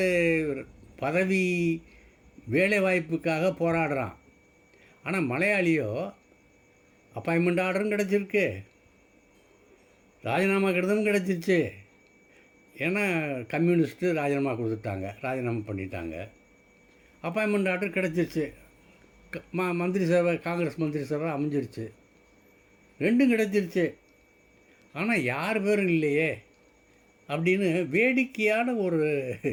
பதவி வேலை வாய்ப்புக்காக போராடுறான். ஆனால் மலையாளியோ அப்பாயின்மெண்ட் ஆர்டரும் கிடச்சிருக்கு, ராஜினாமா கடிதமும் கிடச்சிருச்சு. ஏன்னா கம்யூனிஸ்ட்டு ராஜினாமா கொடுத்துட்டாங்க, ராஜினாமா பண்ணிட்டாங்க. அப்பாயின்மெண்ட் ஆர்டர் கிடச்சிருச்சு, மந்திரி சபை, காங்கிரஸ் மந்திரி சபை அமைஞ்சிருச்சு, 2ம் கிடச்சிருச்சு. ஆனால் யார் பேரும் இல்லையே அப்படின்னு வேடிக்கையான ஒரு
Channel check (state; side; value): identical; both; correlation 1.00